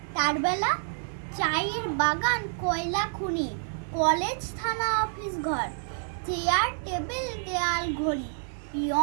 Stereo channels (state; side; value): silent; left; 57 dB below the other